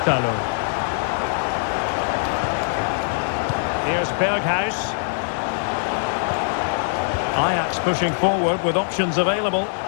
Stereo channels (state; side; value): silent; right; digital silence